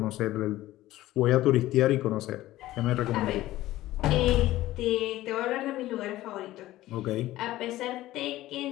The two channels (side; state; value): right; quieter; 15.8 dB